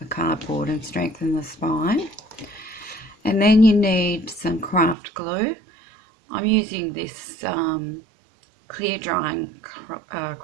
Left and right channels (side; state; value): left; drops out; at 5.0 s